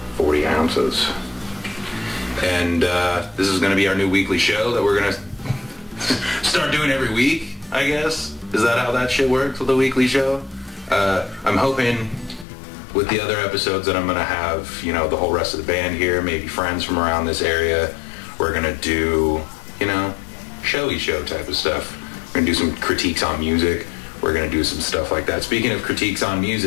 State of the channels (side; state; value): right; drops out; at 12.5 s